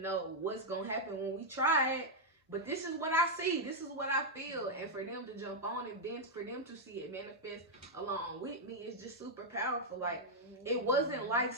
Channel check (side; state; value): both; normal; correlation -0.02